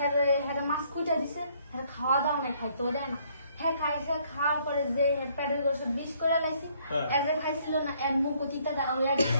হ্যাঁ মাছ কুইটা দিছে হ্যাঁ খাওয়া দাওয়া নাই খাইতেও দেয় না হ্যাঁ খাইছে খাওয়ার পরে যে প্যাডেল গোসব বিষ করে লাইছি এজ খাইছিল না এর মুখ অতীতা হয়ে গেছে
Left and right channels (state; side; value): inverted; both; correlation -0.65